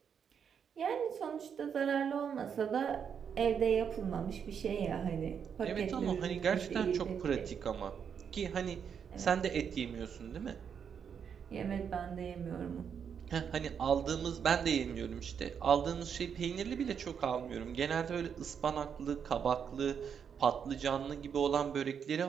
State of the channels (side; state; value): left; quieter; 7.3 dB